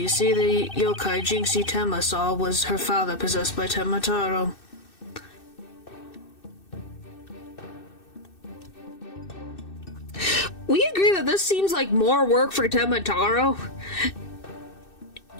see, the yokai Jinxie Tenma saw was her father possessed by Tenma Taro. We agree that this seems like more work for Tenma Taro.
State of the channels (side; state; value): right; late; 2.6 ms